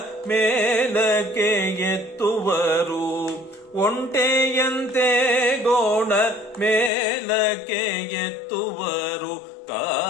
ಮೇಲಕ್ಕೆ ಎತ್ತುವರು ಒಂಟೆಯಂತೆ ಗೋಣ ಮೇಲಕ್ಕೆ ಎತ್ತುವರು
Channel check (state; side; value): drops out; right; at 6.9 s